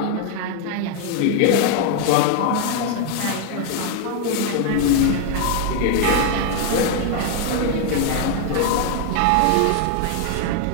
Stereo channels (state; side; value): different; both; correlation 0.00